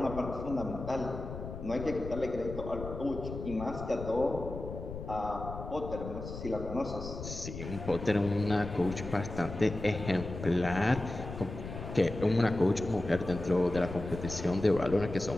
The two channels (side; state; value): left; noise; rumble, 9 dB below the sound